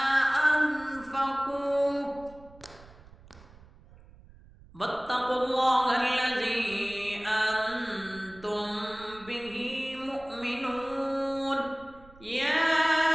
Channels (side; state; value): right; noise; rumble, 23 dB below the sound